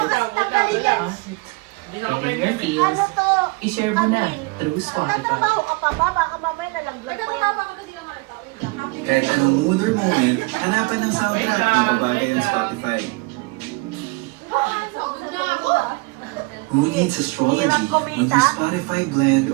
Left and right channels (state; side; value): quieter; left; 26.4 dB